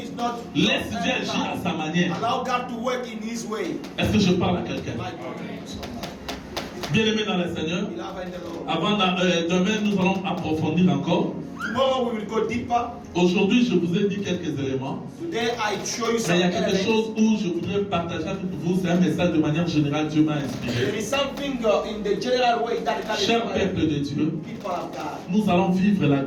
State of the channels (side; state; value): both; identical; correlation 1.00